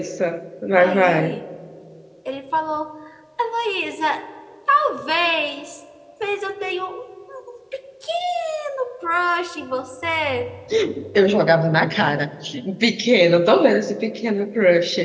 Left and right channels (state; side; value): identical; both; correlation 1.00